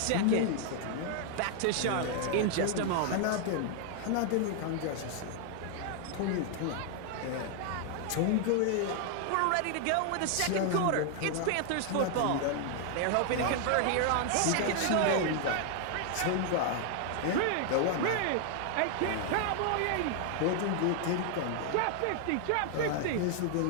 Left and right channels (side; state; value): both; different; correlation 0.00